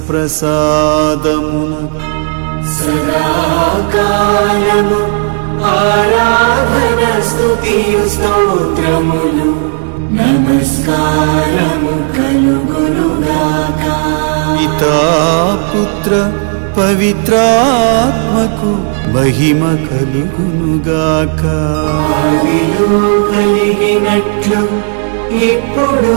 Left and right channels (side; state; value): left; silent; 57 dB below the other